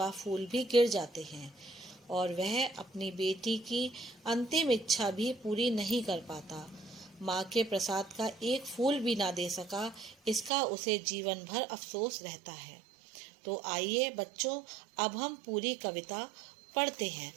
फूल भी गिर जाते हैं और वह अपनी बेटी की अंतिम इच्छा भी पूरी नहीं कर पाता। माँ के प्रसाद का एक फूल भी ना दे सका, इसका उसे जीवन भर अफसोस रहता है। तो आइए बच्चों, अब हम पूरी कविता पढ़ते हैं।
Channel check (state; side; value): drops out; left; at 10.5 s